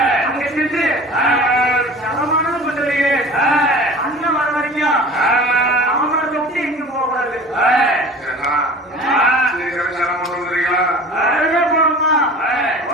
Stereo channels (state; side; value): normal; both; correlation 0.41